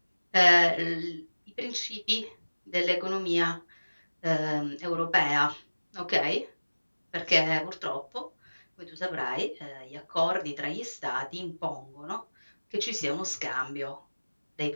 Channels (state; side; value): inverted; both; correlation -1.00